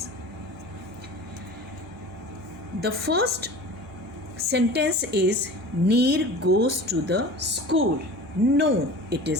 The first sentence is Neer goes to the school. No, it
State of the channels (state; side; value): normal; both; correlation 0.38